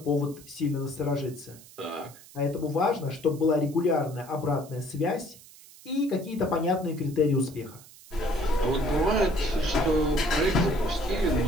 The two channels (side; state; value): right; noise; hiss, 21 dB below the sound